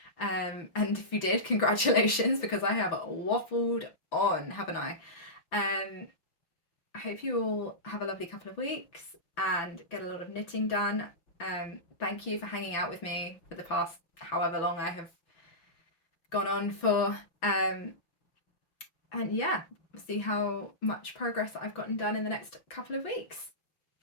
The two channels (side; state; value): right; late; 5.9 ms